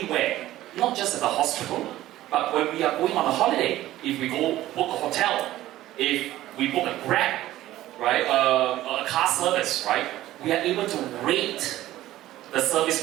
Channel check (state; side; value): quieter; left; 14.9 dB